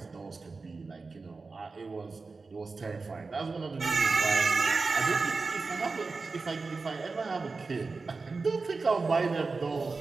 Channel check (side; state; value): left; quieter; 4.1 dB